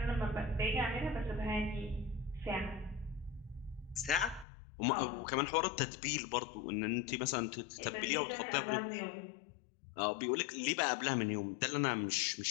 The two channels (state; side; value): drops out; right; at 4.5 s